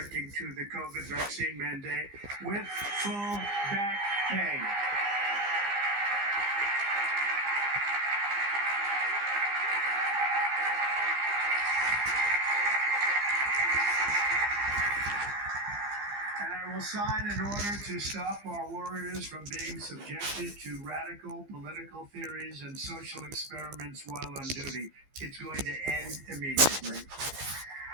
to the COVID vaccine mandate with full back pay. And I will sign an order to stop our warriors from being subjected to radical political theories and social experiments while on duty. It's going to end immediately.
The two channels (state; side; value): late; left; 15 ms